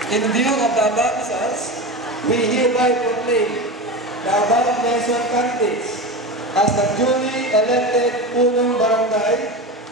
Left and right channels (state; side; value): normal; both; correlation 0.24